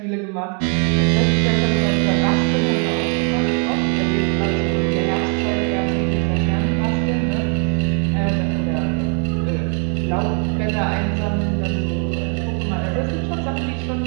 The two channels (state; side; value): quieter; left; 39.5 dB